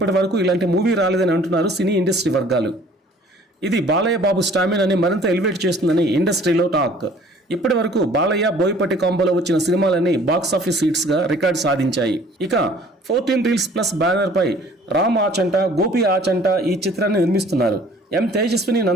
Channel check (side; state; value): both; normal; correlation 0.53